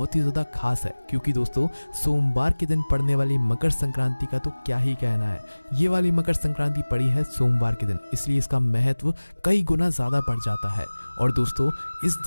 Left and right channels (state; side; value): inverted; both; correlation -1.00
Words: ही ज़्यादा खास है क्योंकि दोस्तों सोमवार के दिन पड़ने वाली मकर संक्रांति का तो क्या ही कहना है। ये वाली मकर संक्रांति पड़ी है सोमवार के दिन, इसलिए इसका महत्व कई गुना ज़्यादा बढ़ जाता है। और दोस्तों, इस